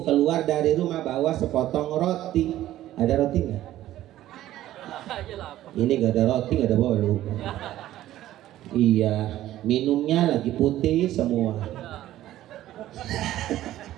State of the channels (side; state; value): left; quieter; 13.9 dB